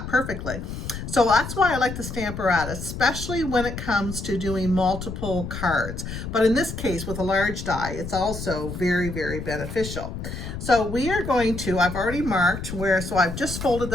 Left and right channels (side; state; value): left; noise; rumble, 7 dB below the sound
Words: perfectly. So that's why I like the stamp apparatus, especially when it comes to doing multiple cards. But in this case, with a large die, it's also very, very beneficial. So we are going to, I've already marked where, so I've just folded